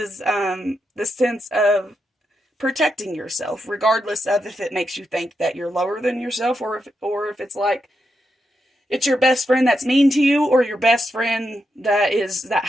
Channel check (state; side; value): normal; both; correlation 0.84